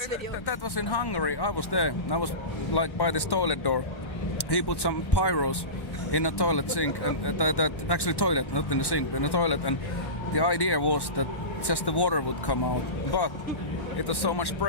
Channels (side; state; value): right; late; 1.1 ms